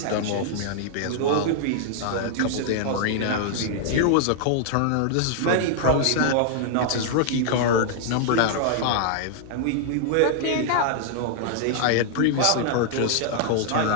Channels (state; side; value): different; both; correlation -0.01